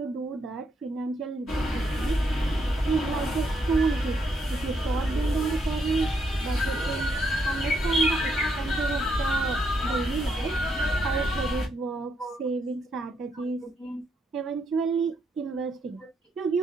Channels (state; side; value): normal; both; correlation 0.76